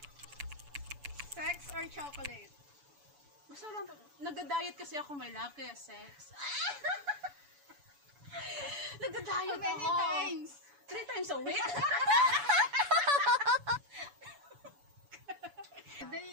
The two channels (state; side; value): late; left; 7.0 ms